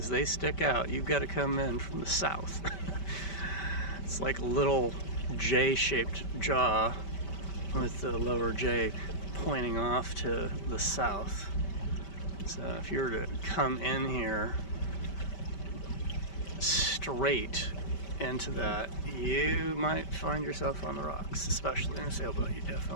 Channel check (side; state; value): right; late; 5.1 ms